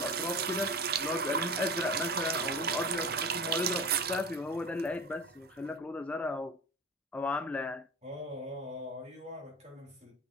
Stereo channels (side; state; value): both; normal; correlation 0.31